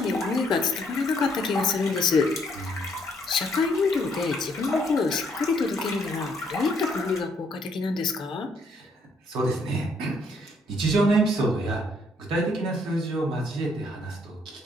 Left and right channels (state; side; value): normal; both; correlation 0.69